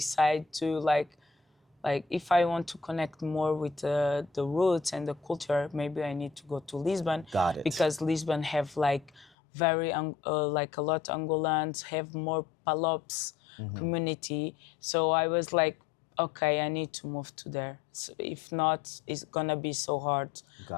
to like if I want to connect more with the roots and the culture, maybe I need to go to Lisbon. Got it. Because Lisbon have like very like a lot of Angolans, have more Palops community. So I was like, okay, I need to move to there. So if not, it's gonna be so hard,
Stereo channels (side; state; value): right; drops out; at 9.3 s